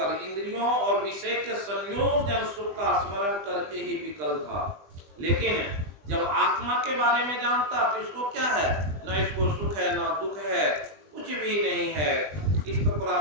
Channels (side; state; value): left; late; 20 ms